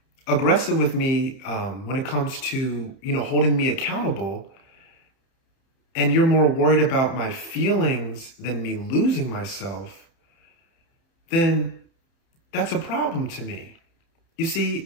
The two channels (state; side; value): late; right; 30 ms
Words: aggressive with me when it comes to, holding me accountable, and you're more worried about my feelings than me losing myself, then that's a problem to me. You see,